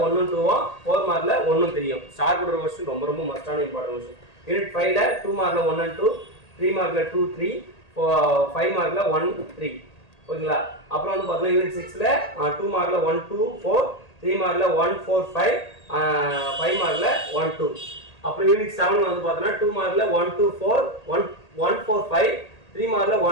1, 2, 4 மார்க்கில் 1, 3. ஸ்டார் போடுற கொஸ்டின் ரொம்ப ரொம்ப மஸ்டான இம்பார்ட்டன்ட் கொஸ்டின். யூனிட் 5ல் 2 மார்க்கில் 1 and 2, 3 மார்க்கில் 2, 3, 5 மார்க்கில் 1, 3. ஓகேங்களா? அப்புறம் வந்து பார்த்தீங்கன்னா யூனிட் 6ல் 2 மார்க்கில் 1, 2, 4, 3 மார்க்கில் 1, 4, 5, 5 மார்க்கில் 1, 2. அப்புறம் யூனிட் 7 வந்து பார்த்தீங்கன்னா 2 மார்க்கில் 1, 2, 4, 1, 4, 5, 3 மார்க்கில்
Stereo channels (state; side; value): late; right; 1.8 ms